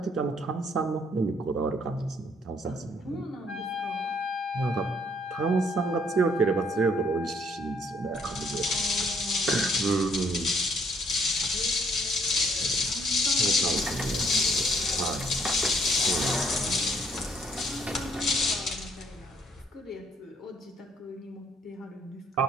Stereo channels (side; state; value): both; normal; correlation 0.66